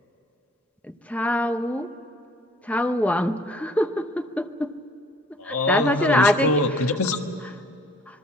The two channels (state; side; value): normal; both; correlation 0.55